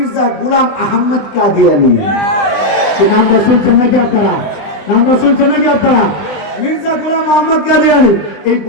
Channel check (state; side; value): late; right; 20 ms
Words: গোলাম আহমদ কাদিয়ানী। এই নামটা শুনছেন নাকি আপনারা? নামটা শুনছেন নাকি আপনারা? মির্জা গোলাম আহমদ কাদিয়ানী এই